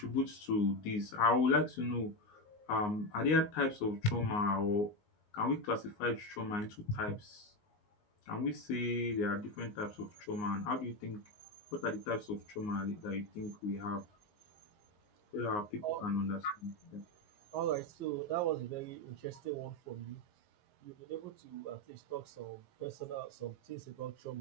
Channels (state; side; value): late; right; 19 ms